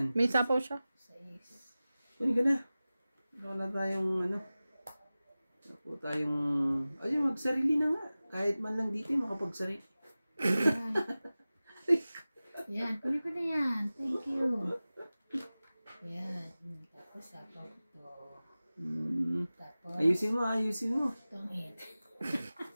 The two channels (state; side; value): inverted; both; correlation -0.97